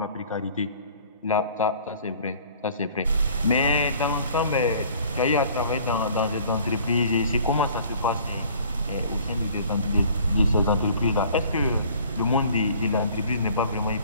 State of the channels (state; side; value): inverted; both; correlation -0.52